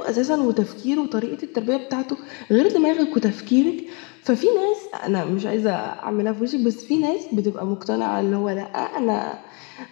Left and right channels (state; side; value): quieter; right; 33.1 dB